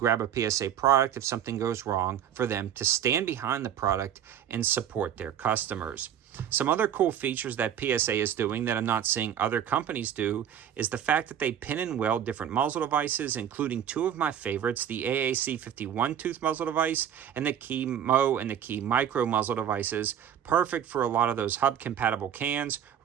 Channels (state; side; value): quieter; left; 9.6 dB